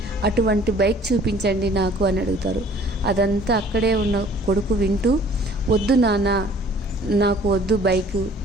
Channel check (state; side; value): normal; both; correlation 0.53